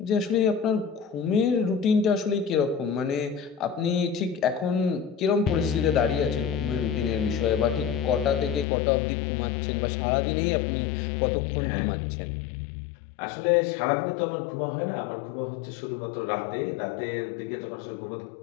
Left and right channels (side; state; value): right; drops out; at 8.7 s